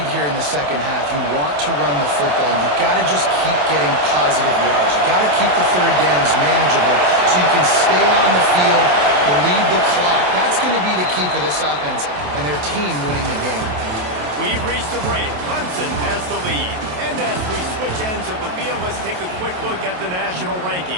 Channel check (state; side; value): late; left; 28 ms